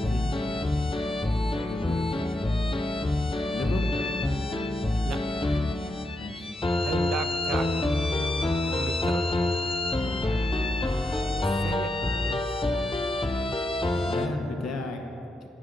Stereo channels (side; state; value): both; normal; correlation 0.85